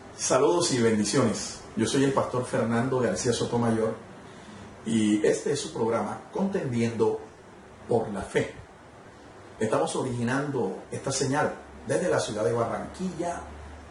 Saludos y bendiciones. Yo soy el pastor Fernando García Sotomayor y este es su programa Contendiendo por la Fe. Estamos originando esta señal desde la ciudad de Barranquilla,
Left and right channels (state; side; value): identical; both; correlation 1.00